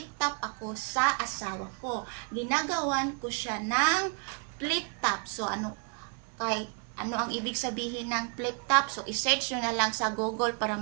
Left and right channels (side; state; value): left; quieter; 36.5 dB